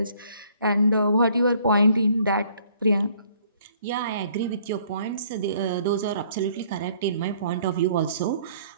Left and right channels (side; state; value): both; inverted; correlation -0.61